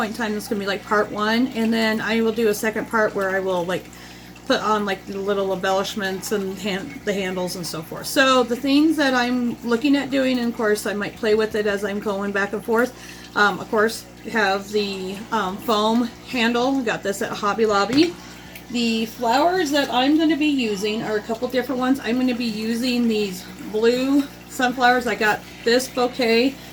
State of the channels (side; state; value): both; identical; correlation 1.00